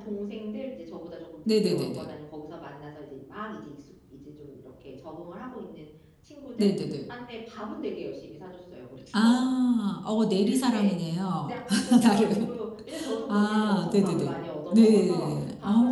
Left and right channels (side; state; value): both; identical; correlation 1.00